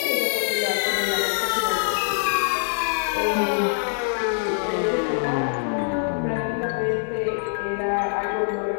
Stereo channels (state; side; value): silent; right; 59 dB below the other